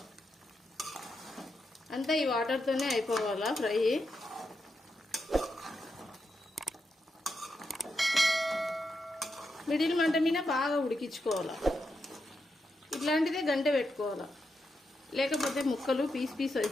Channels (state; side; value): normal; both; correlation 0.85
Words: అంతా ఈ వాటర్తోనే అయిపోవాలా ఫ్రై. మిడిల్ మంట మీద బాగా ఉడికించుకోవాలా. ఇట్లాంటిదే గంట పెట్టుకోవాలా, లేకపోతే ముక్కలు పీస్